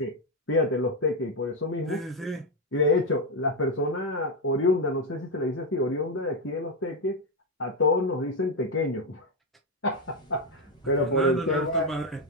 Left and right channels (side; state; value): both; normal; correlation 0.05